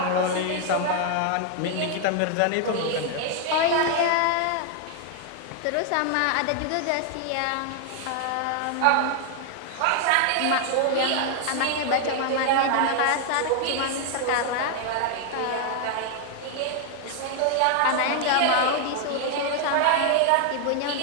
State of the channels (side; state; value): both; different; correlation 0.00